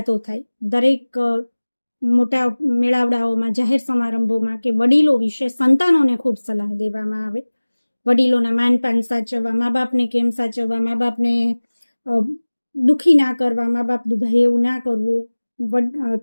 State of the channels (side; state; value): both; inverted; correlation -1.00